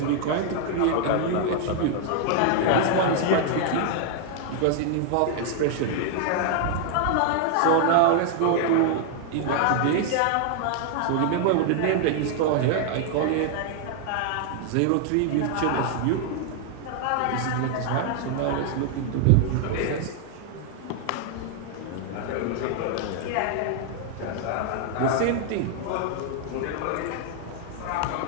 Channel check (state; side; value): different; both; correlation 0.00